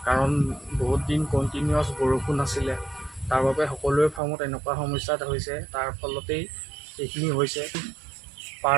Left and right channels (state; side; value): drops out; left; at 4.2 s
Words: কাৰণ বহুত দিন কণ্টিনিউৱাছ বৰষুণ আছিলে, তাৰ বাবে সকলোৰে ফাৰ্মত এনেকুৱা সমস্যা হৈছে। তাৰ ফলতেই এইখিনি হৈছে।